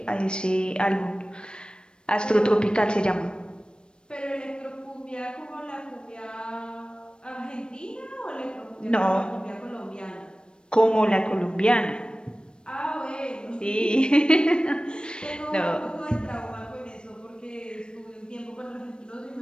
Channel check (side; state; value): right; late; 0.053 ms